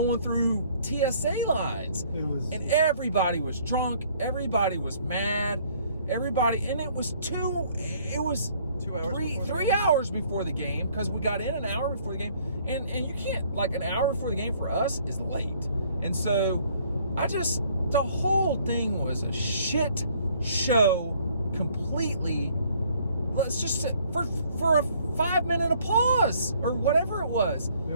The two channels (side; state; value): both; inverted; correlation -0.61